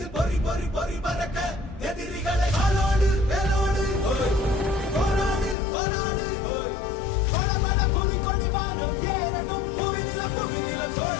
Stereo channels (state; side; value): drops out; right; at 5.6 s